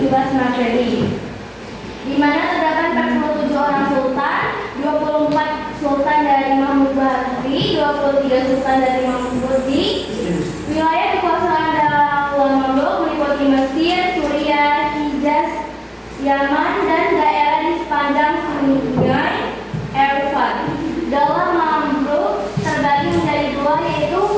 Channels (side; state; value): both; identical; correlation 1.00